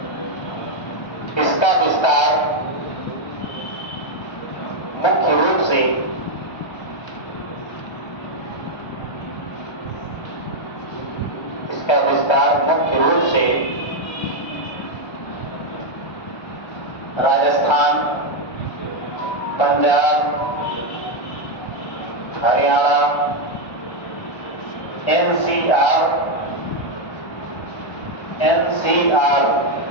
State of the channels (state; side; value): late; right; 1.3 ms